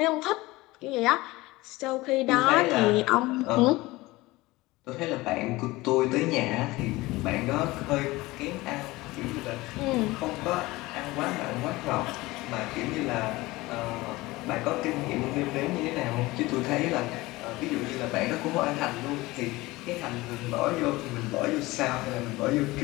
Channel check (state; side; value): quieter; right; 20.2 dB